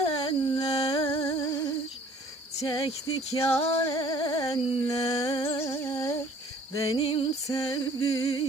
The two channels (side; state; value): both; normal; correlation 0.55